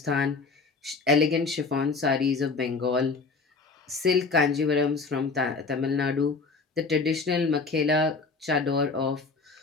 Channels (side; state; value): right; quieter; 4.2 dB